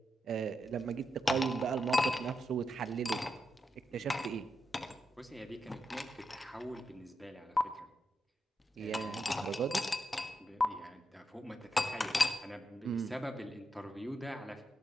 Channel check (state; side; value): normal; both; correlation 0.86